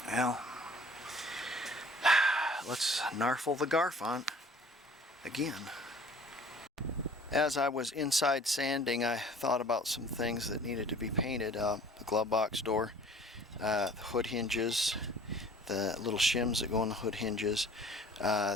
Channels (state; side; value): normal; both; correlation 0.50